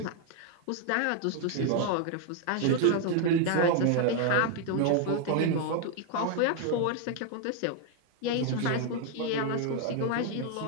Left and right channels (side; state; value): both; different; correlation 0.00